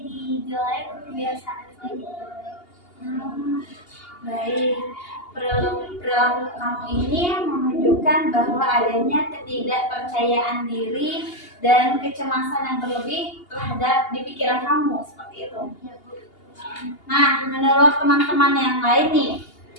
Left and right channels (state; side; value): late; right; 2.8 ms